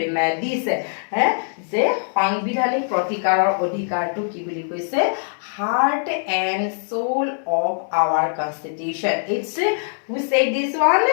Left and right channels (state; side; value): silent; right; digital silence